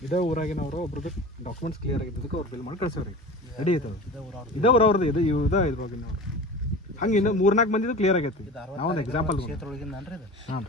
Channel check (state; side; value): normal; both; correlation 0.35